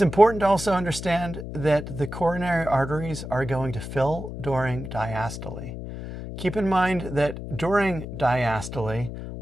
important to also understand that the coronary arteries are going to fill during diastole. Keep in mind that during diastole,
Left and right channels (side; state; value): left; noise; hum, 9 dB below the sound